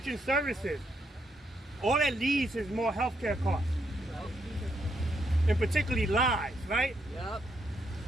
services, all that leads is more healthcare costs. And particularly lives, right? Yep.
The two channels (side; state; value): both; normal; correlation 0.77